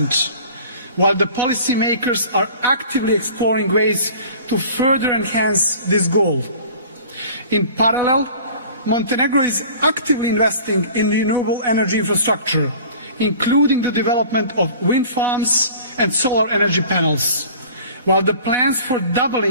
while the policymakers are actively exploring ways to further enhance this goal. In parallel, Montenegro is actively investing in renewable energy infrastructure, including the development of wind farms and solar energy panels, while the plans for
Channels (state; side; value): inverted; both; correlation -0.45